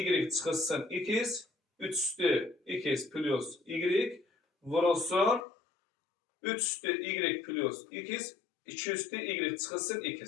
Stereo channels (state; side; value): drops out; right; at 5.5 s